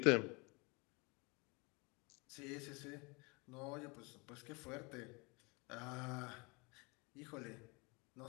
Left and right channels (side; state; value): right; quieter; 28.5 dB